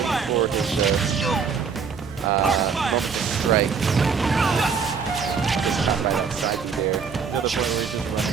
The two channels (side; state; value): left; quieter; 5.9 dB